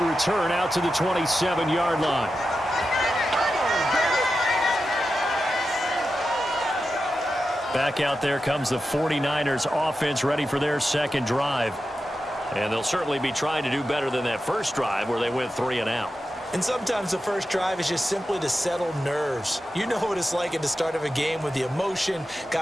return out to the 27-yard line. Back out there comes the 49ers offense ready for their second drive. And they'll certainly be trying to do better than that first drive where they went 3 and out. And sometimes the first drive is just simply to settle nerves. You know what it's like at the start of a game with the emotion.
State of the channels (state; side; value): normal; both; correlation 0.90